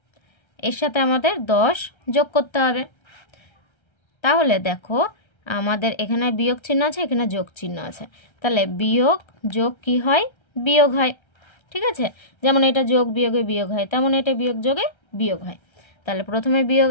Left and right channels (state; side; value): late; right; 1.3 ms